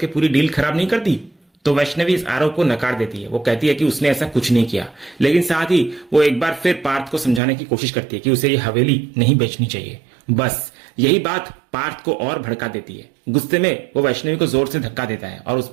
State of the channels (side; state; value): left; drops out; at 7.4 s